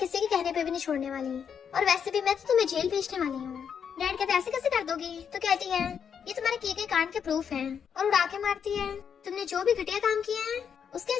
के कहने पे भी नहीं छोड़ने वाली, और वैसे भी मैं तो तुम्हें जेल भेजने वाली हूँ। डैड कहते ऐसे कैसे कर दोगी? तो कहती है ये तुम्हारे किए गए कांड के प्रूफ हैं, और उड़ा के मारती है तुमने जो भी घटिया काम किया है उसके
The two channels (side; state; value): right; quieter; 7.4 dB